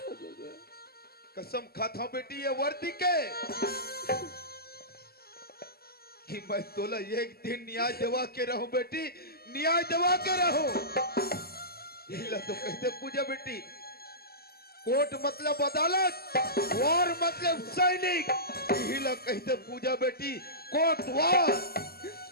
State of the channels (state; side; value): late; right; 0.45 ms